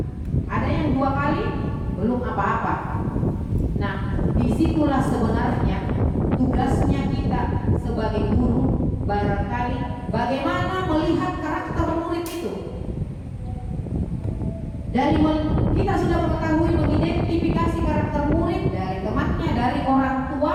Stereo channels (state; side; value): identical; both; correlation 1.00